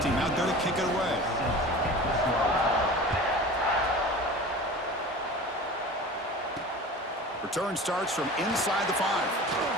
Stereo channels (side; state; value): both; normal; correlation 0.37